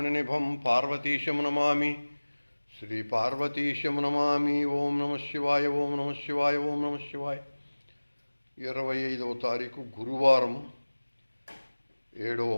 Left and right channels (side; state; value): both; inverted; correlation -1.00